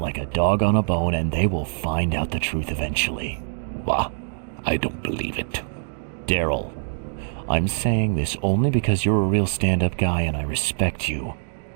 a dog on a bone, and they will find out the truth eventually. What? I don't believe it. Daryl, I'm saying this only because you're a real stand-up guy and I respect you.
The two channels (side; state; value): left; silent; 63 dB below the other